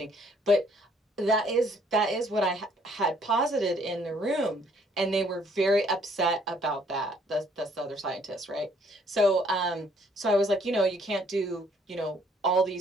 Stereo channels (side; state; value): both; normal; correlation 0.64